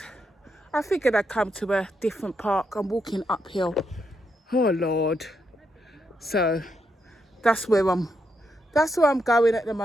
I figured I'd come to a different park. I'm walking uphill. Oh Lord. So that's where I'm going at the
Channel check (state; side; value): normal; both; correlation 0.81